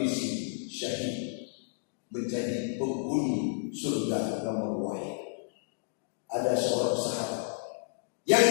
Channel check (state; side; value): silent; right; digital silence